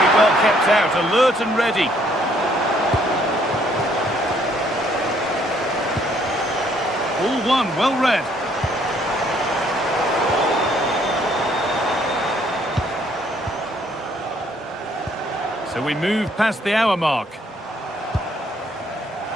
well kept out, alert and ready. All one, well read. So we move past the hour mark.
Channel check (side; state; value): both; normal; correlation 0.66